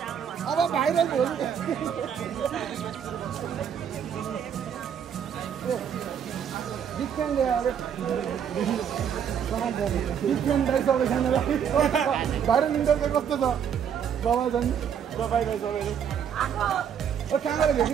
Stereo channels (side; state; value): left; quieter; 8.2 dB